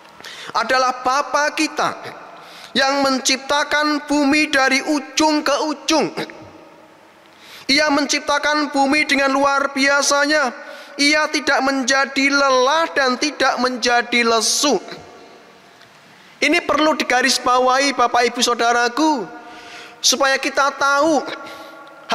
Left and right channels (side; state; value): both; identical; correlation 1.00